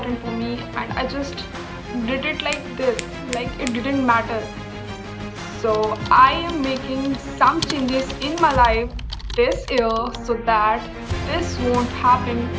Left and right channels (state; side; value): identical; both; correlation 1.00